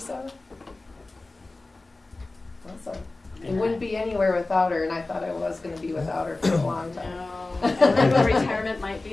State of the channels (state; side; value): quieter; right; 3.2 dB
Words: Awesome. It wouldn't be anywhere without her, and I thought I was going to be without her for a long time. No, I don't know what retirement might